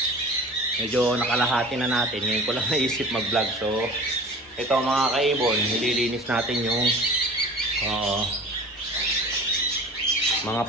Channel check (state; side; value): normal; both; correlation 0.40